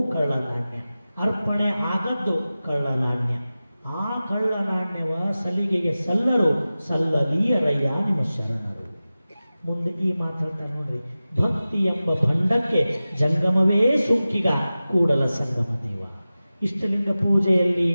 ಕಳ್ಳ ನಾಣ್ಯ. ಅರ್ಪಣೆ ಆಗದ್ದು ಕಳ್ಳ ನಾಣ್ಯ. ಆ ಕಳ್ಳ ನಾಣ್ಯವ ಸಲಿಗೆಗೆ ಸಲ್ಲರು, ಸಲ್ಲಲೀಯರಯ್ಯ ನಿಮ್ಮ ಶರಣರು. ಮುಂದೆ ಈ ಮಾತಾಡ್ತಾರೆ ನೋಡ್ರಿ, ಭಕ್ತಿ ಎಂಬ ಭಂಡಕ್ಕೆ ಜಂಗಮವೇ ಸುಂಕಿಗ ಕೂಡಲ ಸಂಗಮ ದೇವ. ಇಷ್ಟಲಿಂಗ ಪೂಜೆಯಲ್ಲಿ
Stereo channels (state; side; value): inverted; both; correlation -0.96